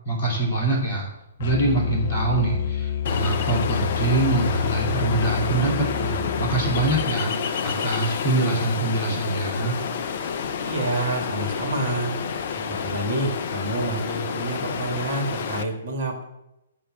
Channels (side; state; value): both; inverted; correlation -0.32